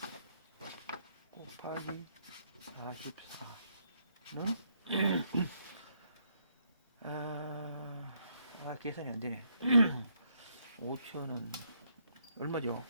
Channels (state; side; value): inverted; both; correlation -0.73